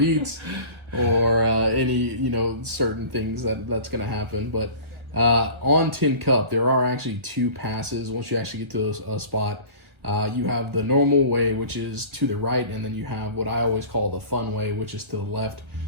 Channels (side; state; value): left; late; 1.5 ms